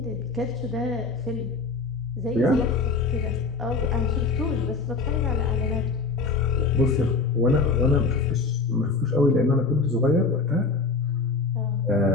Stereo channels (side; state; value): right; quieter; 4.1 dB